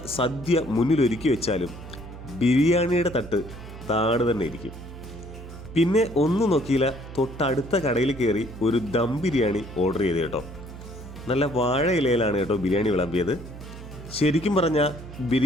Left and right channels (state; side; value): noise; right; hum, 14 dB below the sound